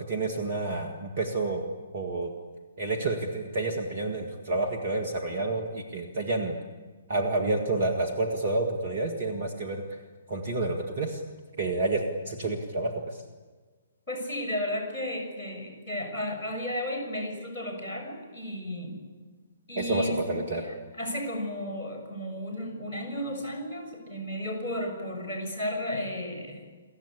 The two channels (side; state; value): both; inverted; correlation -0.53